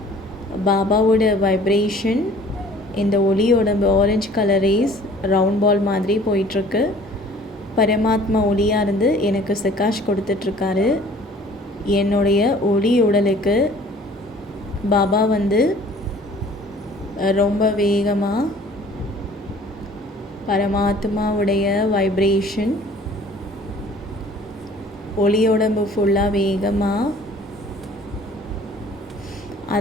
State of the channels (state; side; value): normal; both; correlation 0.52